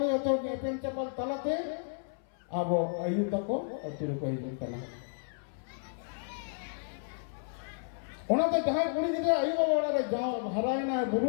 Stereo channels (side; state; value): right; silent; 56 dB below the other